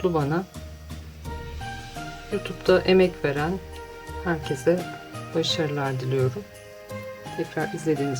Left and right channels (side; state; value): both; identical; correlation 1.00